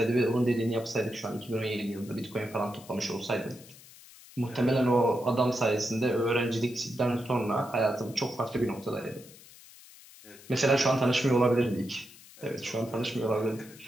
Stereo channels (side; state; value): left; noise; hiss, 21 dB below the sound